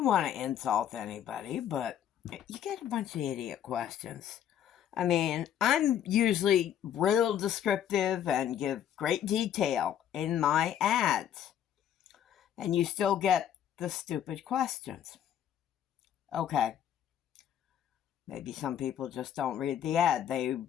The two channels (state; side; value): quieter; right; 9.9 dB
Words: want to insult anybody, but you get a bunch of idiot questions. I mean, I'm usually real descriptive and give great detail in my ads. And you still get the stupid questions. Okay. Maybe some people just don't read the ad. They